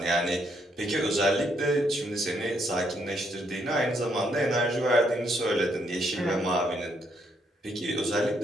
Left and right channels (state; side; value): normal; both; correlation 0.74